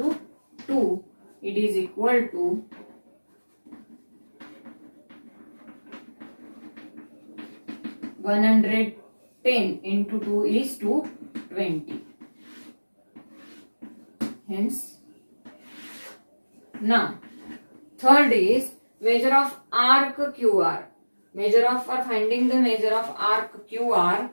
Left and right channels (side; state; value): both; inverted; correlation -1.00